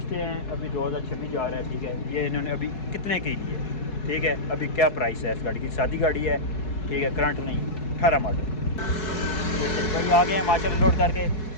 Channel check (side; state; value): right; late; 4.7 ms